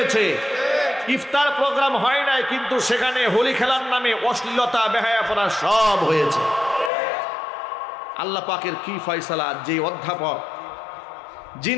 ইফতার প্রোগ্রাম হয় নাই, কিন্তু সেখানে হোলি খেলার নামে অশ্লীলতা, বেহায়াপনা সব হয়েছে। আল্লাহ পাকের কি ফয়সালা! যে অধ্যাপক,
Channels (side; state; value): right; drops out; at 6.9 s